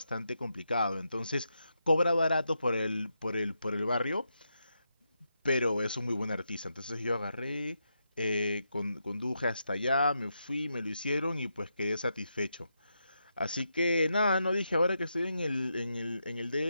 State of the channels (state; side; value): inverted; both; correlation -0.84